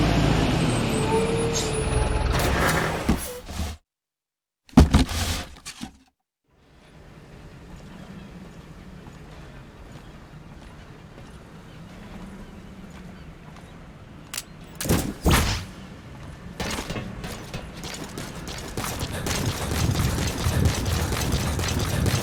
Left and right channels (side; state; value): both; identical; correlation 1.00